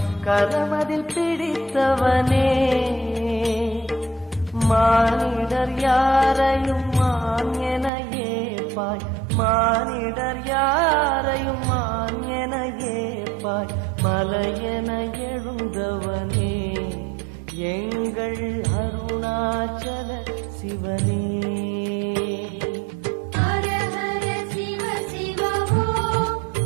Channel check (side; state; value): left; drops out; at 7.9 s